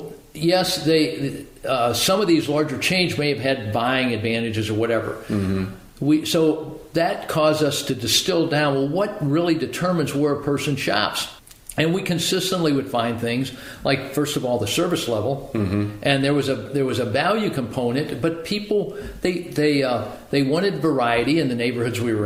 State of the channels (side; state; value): both; identical; correlation 1.00